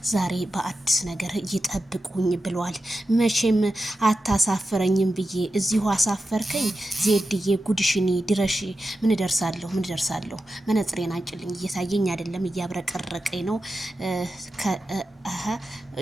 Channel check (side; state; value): both; normal; correlation 0.91